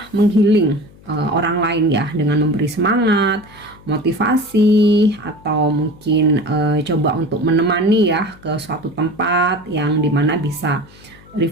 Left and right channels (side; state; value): left; noise; hum, 24 dB below the sound